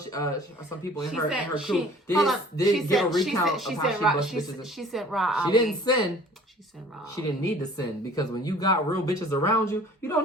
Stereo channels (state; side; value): normal; both; correlation 0.50